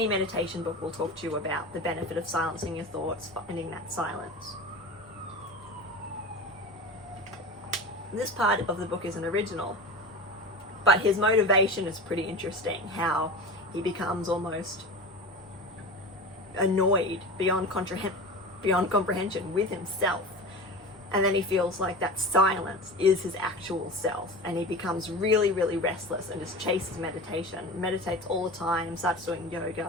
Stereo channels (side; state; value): left; noise; rumble, 29 dB below the sound